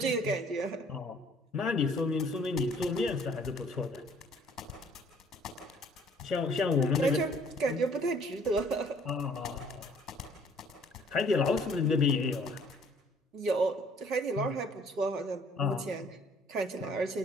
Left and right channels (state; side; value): normal; both; correlation 0.59